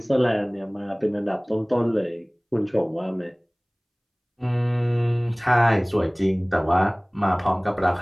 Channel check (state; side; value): identical; both; correlation 1.00